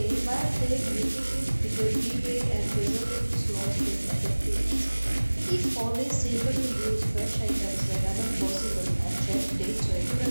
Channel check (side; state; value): both; inverted; correlation -1.00